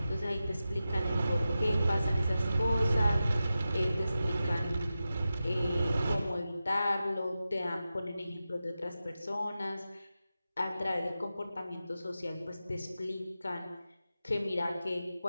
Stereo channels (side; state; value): both; inverted; correlation -0.92